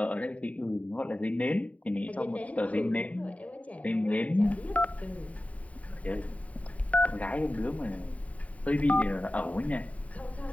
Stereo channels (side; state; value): right; late; 0.068 ms